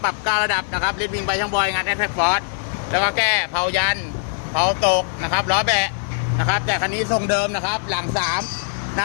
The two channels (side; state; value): right; silent; digital silence